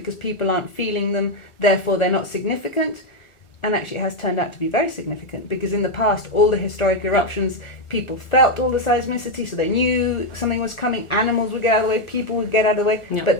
people aren't feeling them, therefore they're not significant. And actually it has turned out to be very significant, because in the past, all the historic eruptions, people felt all the seismicity, so they knew something was coming, animals would get out of the way, people would get out of the way. Yeah. But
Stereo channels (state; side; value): late; right; 1.4 ms